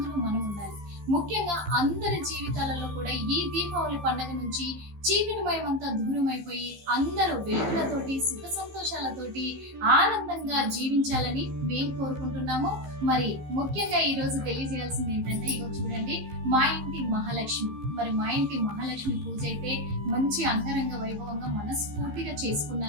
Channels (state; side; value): late; left; 14 ms